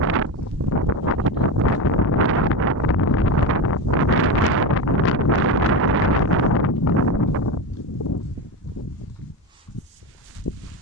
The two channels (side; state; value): both; normal; correlation 0.19